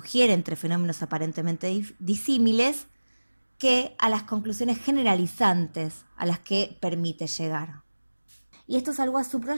entre fenómenos aparentemente disímiles, que a las conclusiones generalizantes a las que permite llegar. Y esto es algo a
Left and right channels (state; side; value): inverted; both; correlation -1.00